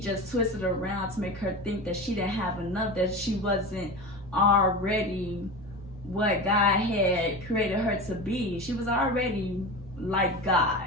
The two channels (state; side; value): normal; both; correlation 0.27